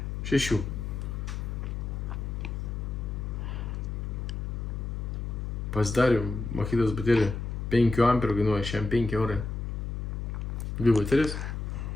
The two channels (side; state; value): left; noise; hum, 4 dB below the sound